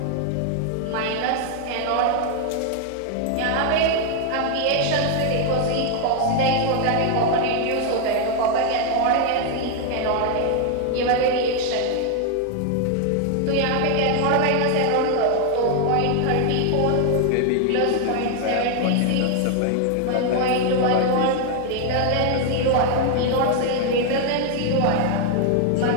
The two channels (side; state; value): both; different; correlation 0.00